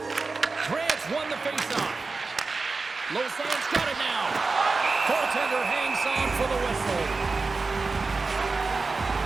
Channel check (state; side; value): quieter; left; 4.0 dB